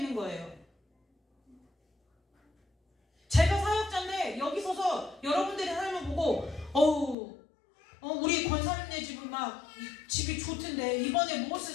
거예요. 제가 사역자인데 여기 서서 여러분들이 하나님을 보고 우리 권사님네 집은 막 집이 좋던데 이번에 무엇을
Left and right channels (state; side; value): drops out; right; at 7.2 s